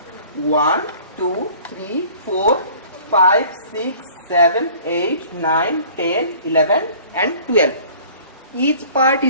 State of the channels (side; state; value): both; inverted; correlation -0.50